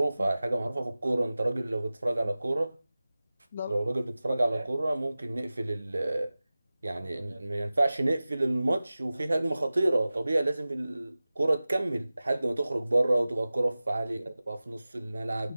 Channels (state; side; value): inverted; both; correlation -0.97